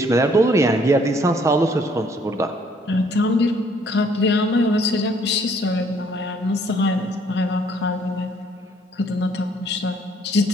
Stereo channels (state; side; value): normal; both; correlation 0.63